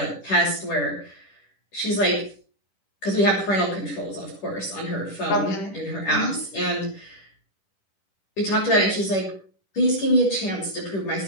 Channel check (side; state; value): right; late; 10 ms